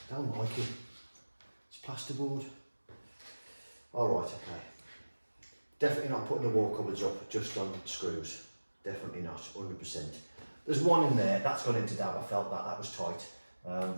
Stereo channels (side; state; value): both; inverted; correlation -1.00